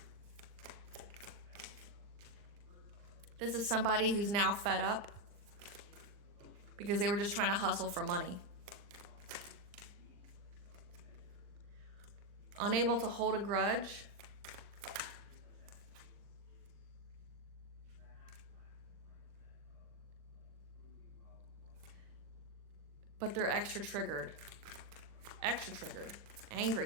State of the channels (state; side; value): late; left; 40 ms